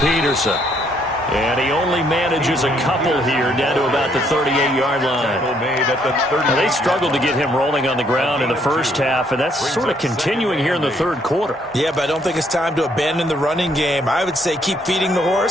Peterson. And he only manages a couple here down to about the 38-yard line. Now, they struggled to get him rolling on the ground in the first half, and that's sort of continuing here in the 3rd quarter. Yeah, but I don't think it's time to abandon the running game. I would say keep feeding the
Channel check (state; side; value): normal; both; correlation 0.69